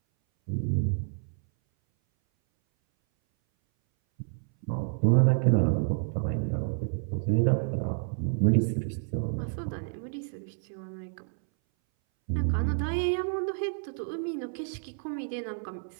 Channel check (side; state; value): left; silent; 58 dB below the other